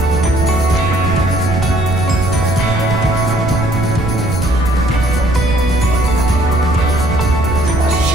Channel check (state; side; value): noise; right; rumble, 4 dB below the sound